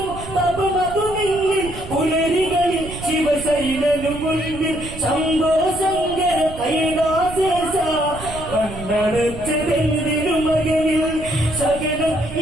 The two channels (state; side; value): noise; right; rumble, 12 dB below the sound